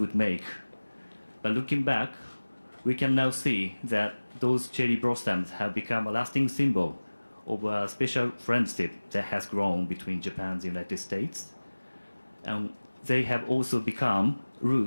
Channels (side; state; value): both; inverted; correlation -1.00